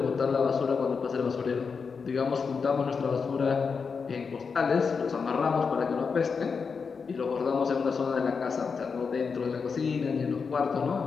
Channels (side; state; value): right; quieter; 5.4 dB